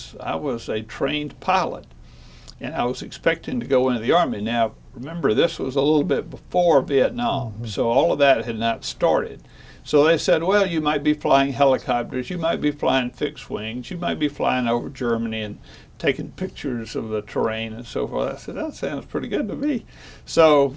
a trained pilot, and I was expecting to go into the Army. Now, remember, this was a little bit before Vietnam, so all of that had not started. So they said, well, you might be flying helicopters, you might be flying fixed wings, you might be flying over Germany and taking pictures of the terrain and so forth. I said, that sounds pretty good to me. So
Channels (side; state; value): both; identical; correlation 1.00